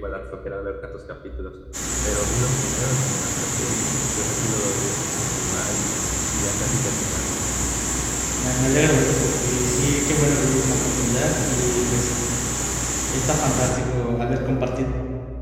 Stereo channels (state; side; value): identical; both; correlation 1.00